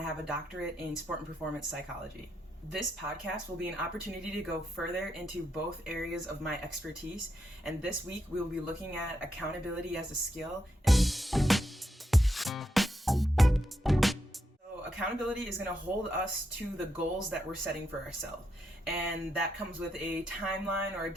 have a doctorate in sport and performance psychology. This podcast will be an opportunity to go further into both areas of my expertise, and this week we will be looking at accountability as a skill. Accountability is going to hold us to the goals that we're setting for ourselves. And that comes with a timeline or a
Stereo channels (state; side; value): normal; both; correlation 0.82